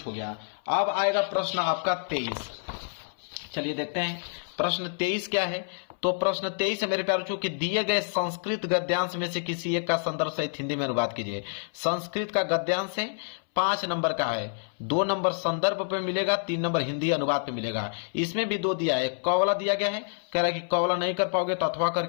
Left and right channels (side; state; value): right; silent; 59 dB below the other